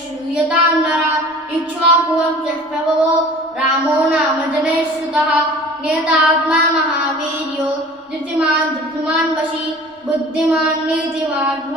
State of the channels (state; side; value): normal; both; correlation 0.43